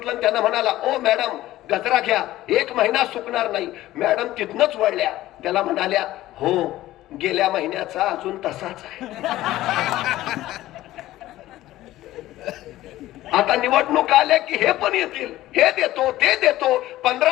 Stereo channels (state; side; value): quieter; right; 15.5 dB